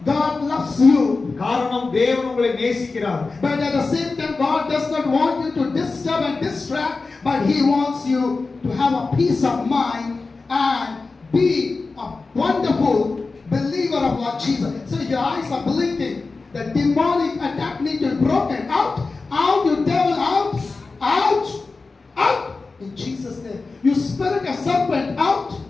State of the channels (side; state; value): right; quieter; 3.9 dB